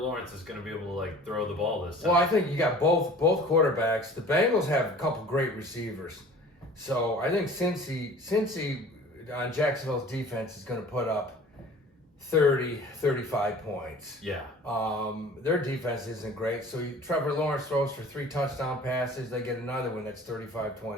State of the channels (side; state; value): both; normal; correlation 0.45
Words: is going to be able to like throw the ball this time? Well, I think you got both quarterbacks. The Bengals have a couple great receivers, so I think Cincy on Jacksonville's defense is going to put up 30, 35 points. Yeah. Their defense isn't great, so Trevor Lawrence throws for 3 touchdown passes. They get another one that's